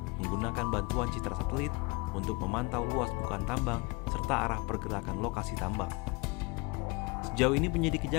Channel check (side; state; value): right; quieter; 27.3 dB